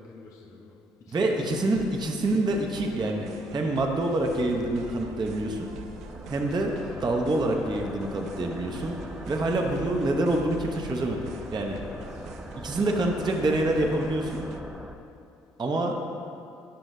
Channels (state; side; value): normal; both; correlation 0.73